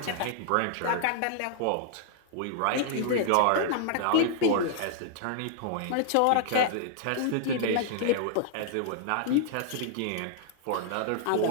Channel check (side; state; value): both; different; correlation -0.01